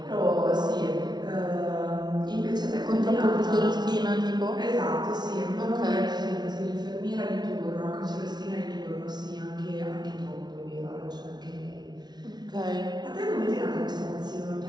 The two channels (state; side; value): late; left; 0.20 ms